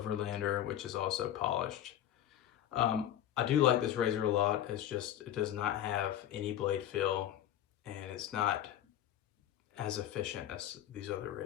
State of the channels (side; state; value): right; quieter; 11.5 dB